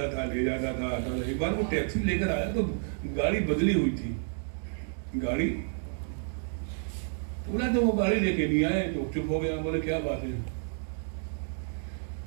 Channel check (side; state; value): left; silent; 58 dB below the other